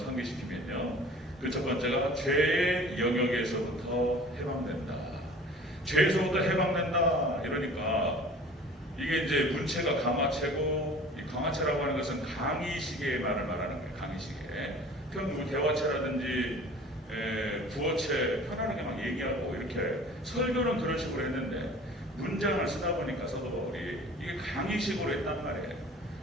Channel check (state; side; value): normal; both; correlation 0.45